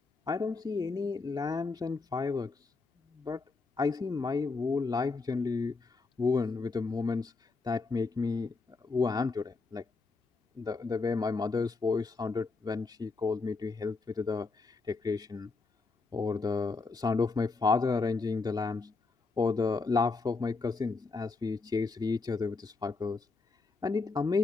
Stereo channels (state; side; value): quieter; right; 4.1 dB